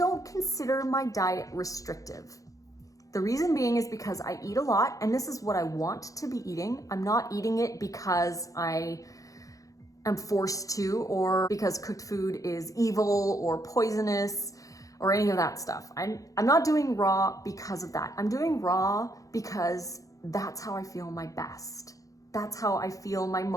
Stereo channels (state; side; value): late; right; 0.16 ms